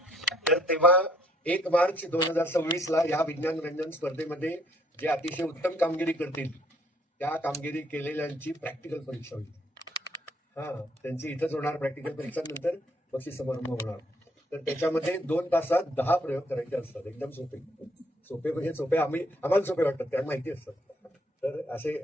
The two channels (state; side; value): normal; both; correlation 0.67